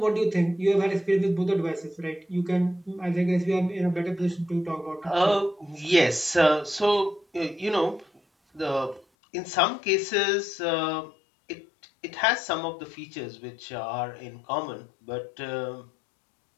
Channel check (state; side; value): drops out; right; at 9.1 s